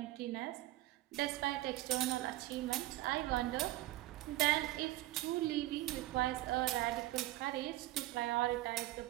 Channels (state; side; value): quieter; left; 17.0 dB